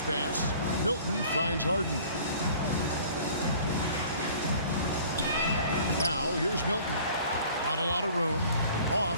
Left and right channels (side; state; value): both; inverted; correlation -0.49